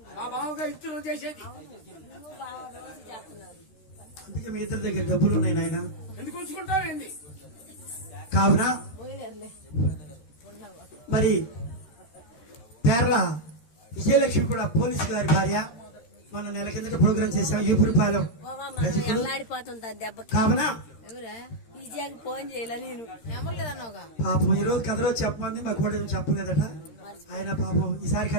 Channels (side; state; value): right; late; 13 ms